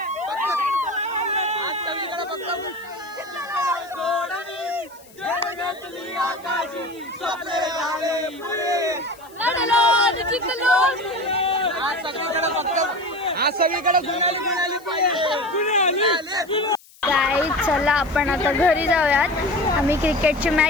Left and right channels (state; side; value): noise; left; hiss, 25 dB below the sound